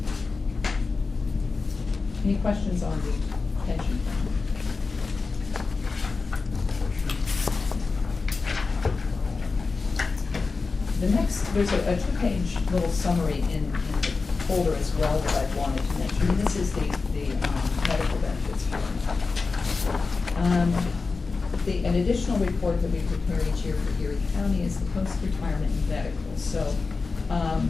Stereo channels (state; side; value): quieter; right; 4.2 dB